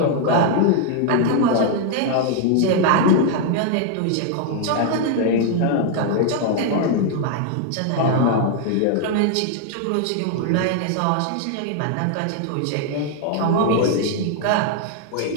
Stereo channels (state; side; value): different; both; correlation 0.00